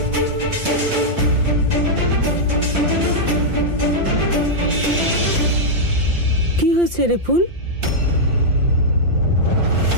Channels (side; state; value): left; late; 5.8 ms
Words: কি হয়েছে রে ফুল?